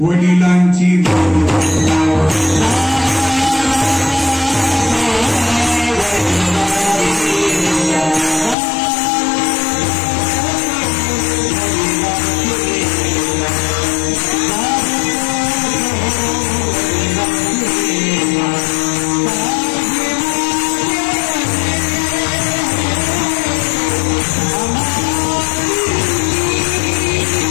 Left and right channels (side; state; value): right; drops out; at 8.6 s